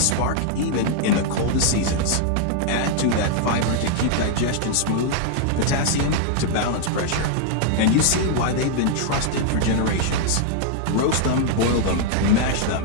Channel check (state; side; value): different; both; correlation 0.00